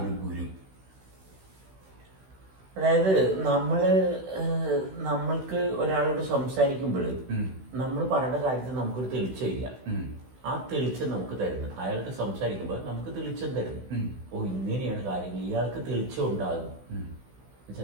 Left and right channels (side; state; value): left; late; 16 ms